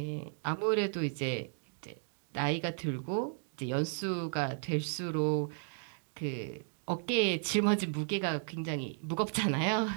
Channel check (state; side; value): silent; left; digital silence